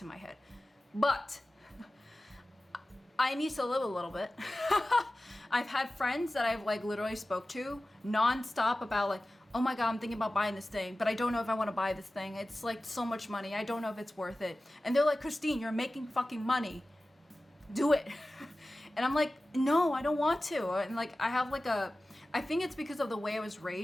my head. But I need to live a little bit. I've had friends that I've like literally spoke to nonstop about like, oh my God, I'm thinking about buying this thing, but I don't know if I want to buy this thing. It's like so much money. I don't know if it's worth it. And they're like, Christine, you're making fucking money. Do it. And I'm like, no, I don't want to. And like, I have like I think it's because of the way I was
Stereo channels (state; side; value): normal; both; correlation 0.96